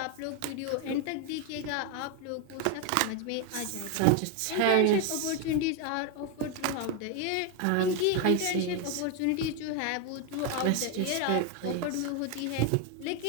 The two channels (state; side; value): different; both; correlation 0.01